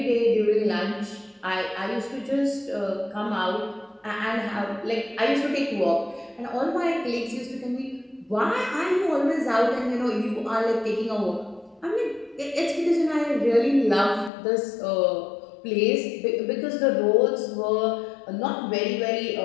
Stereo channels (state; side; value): drops out; right; at 14.3 s